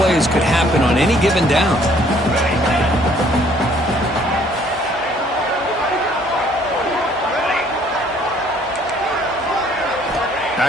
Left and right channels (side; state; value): both; normal; correlation 0.61